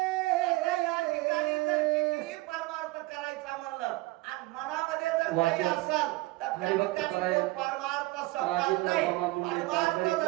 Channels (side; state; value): left; quieter; 20.9 dB